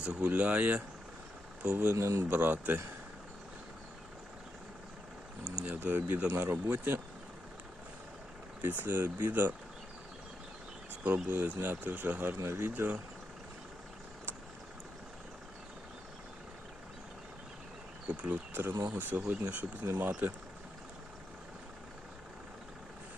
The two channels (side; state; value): both; normal; correlation 0.84